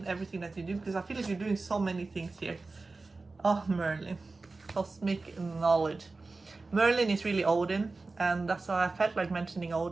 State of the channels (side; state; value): left; quieter; 3.6 dB